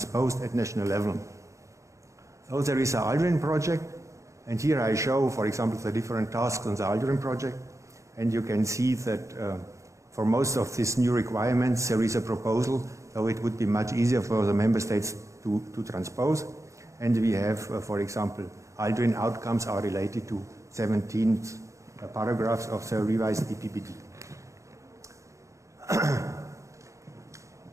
at national level. So there is an ALDREN project. And here I show, for example, the different tasks on the ALDREN project. And you can see that for most of these new requirements, there is a proposal, so it would be much easier for the member states to transpose. And we have, for example, ALDREN outcomes are related to 17 paragraphs of the revised EPBD.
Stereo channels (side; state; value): left; late; 0.15 ms